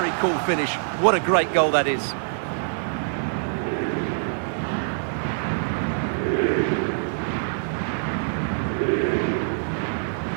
cool finish. What a great goal that is.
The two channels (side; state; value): left; silent; digital silence